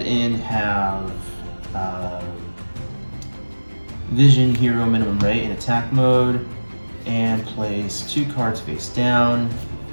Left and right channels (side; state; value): both; inverted; correlation -1.00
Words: and have Vision Hero Minimum Ray in attack mode and place 2 cards face down.